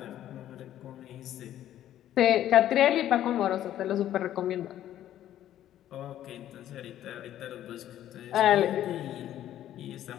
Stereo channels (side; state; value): right; quieter; 12.1 dB